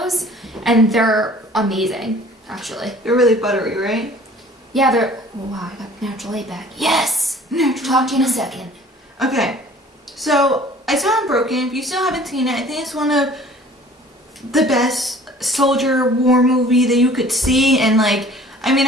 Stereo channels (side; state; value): both; normal; correlation 0.50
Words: and they're amazing. Actually, They're really buttery, right? yeah, they're. Oh, wow, I got Natural Light back. Yes. Talk to you in a second. Okay, so I saw Unbroken. If you still haven't seen it, I think it's one of the best soldier war movie that you could see. And like, I mean,